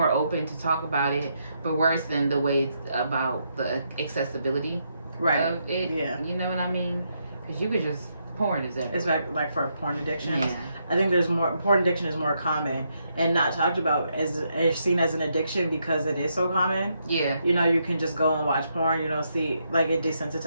open to talk about it. But worse than the way it's about the accessibility of it. Yeah. You know what I mean? Because you could just, porn is everywhere. It's like for porn addiction. Yeah. I think porn addiction is more common and not talked about as seen as an addiction because it is so common. Yeah. You know, you can just go and watch porn. You don't see, like, it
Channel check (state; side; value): inverted; both; correlation -0.78